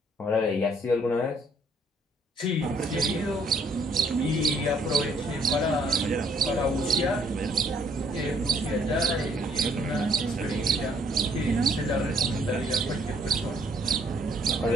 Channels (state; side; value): normal; both; correlation 0.64